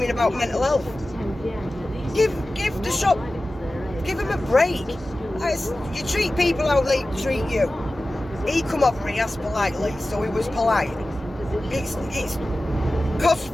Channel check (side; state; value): both; normal; correlation 0.95